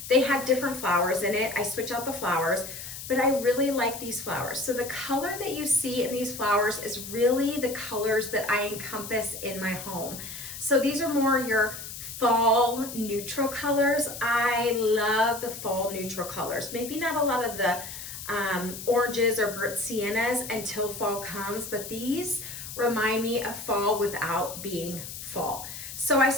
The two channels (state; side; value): noise; left; hiss, 10 dB below the sound